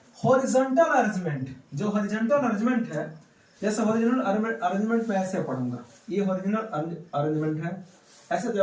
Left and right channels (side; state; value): both; identical; correlation 1.00